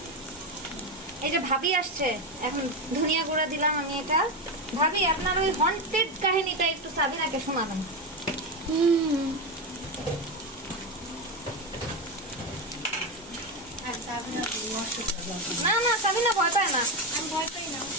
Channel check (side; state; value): both; normal; correlation 0.13